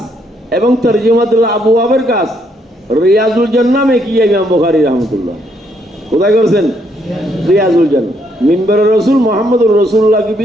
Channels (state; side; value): normal; both; correlation 0.72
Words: এবং তরজমাতুল আবওয়াবের কাজ रियाजुल जन्ना में किया इमाम बुखारी रहमतुल्लाह। खुदा करसन रियाजुल जन्ना, मिंबर रसूल मोहम्मद रसूलुल्लाह की